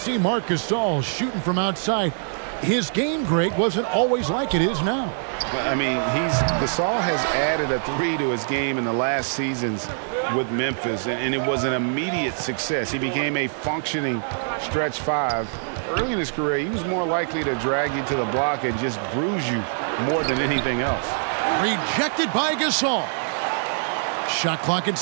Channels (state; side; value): silent; left; digital silence